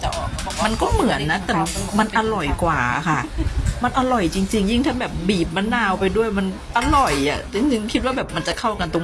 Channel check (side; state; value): both; identical; correlation 1.00